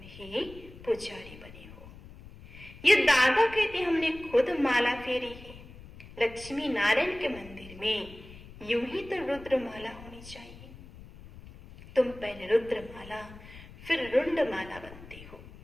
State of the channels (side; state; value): left; noise; rumble, 17 dB below the sound